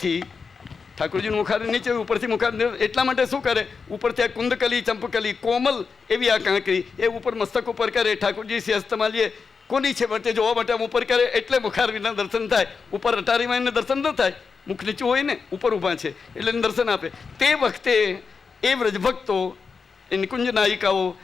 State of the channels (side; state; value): right; quieter; 5.2 dB